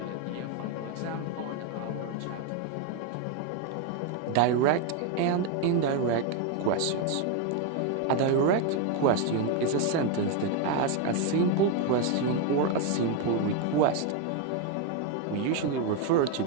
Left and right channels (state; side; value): different; both; correlation 0.01